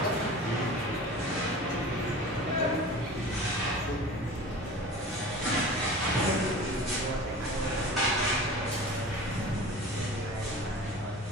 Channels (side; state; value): both; normal; correlation 0.37